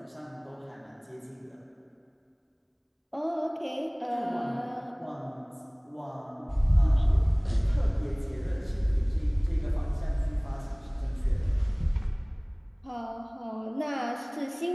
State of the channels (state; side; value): identical; both; correlation 1.00